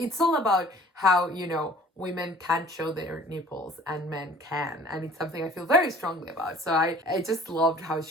all about how, you know, women can't show their nipples and men can. And it's something I feel very strongly about. So I just loved how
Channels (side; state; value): both; normal; correlation 0.50